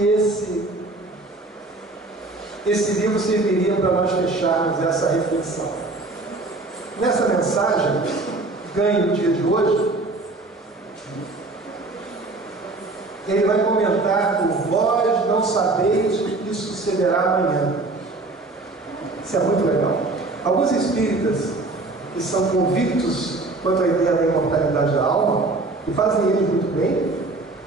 esse livro serviria para nós fecharmos essa reflexão. Nessa mensagem, ganhe o dia de hoje, ele vai comentar por vós não sabeis o que sucederá amanhã. Isso é muito legal. Alguns espíritas que são convictos quanto à ideia da imortalidade da alma, e fazem eles muito bem,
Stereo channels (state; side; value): quieter; left; 3.2 dB